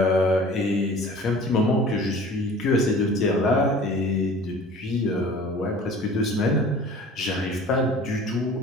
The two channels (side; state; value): both; normal; correlation 0.45